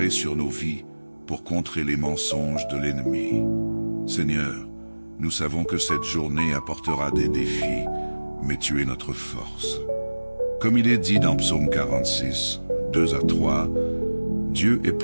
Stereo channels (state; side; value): inverted; both; correlation -1.00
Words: sur nos vies pour contrer les mensonges de l'ennemi. Seigneur, nous savons que cette journée apportera des défis, mais tu es notre force. Comme il est dit dans Psaume 46, 2 à 3, Dieu est